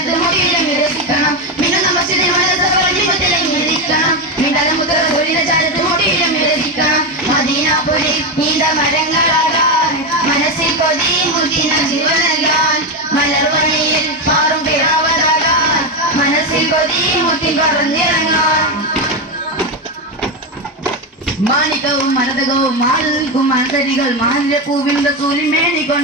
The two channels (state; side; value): normal; both; correlation 0.12